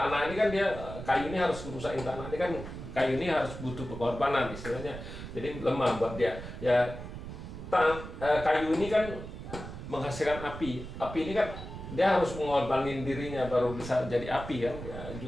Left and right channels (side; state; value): right; noise; rumble, 10 dB below the sound